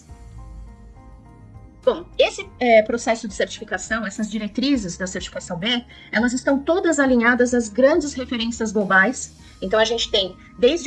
Bom, esse processo de certificação, essas diretrizes da certificação B, elas estão todas alinhadas às grandes referências globais. Então, a gente tem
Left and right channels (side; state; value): both; identical; correlation 1.00